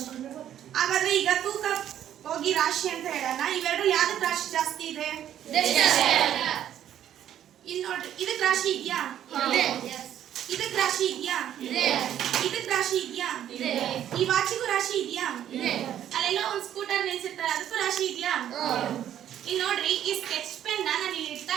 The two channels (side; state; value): left; quieter; 10.8 dB